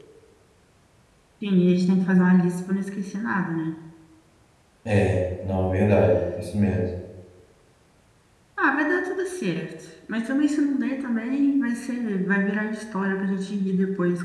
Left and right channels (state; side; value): identical; both; correlation 1.00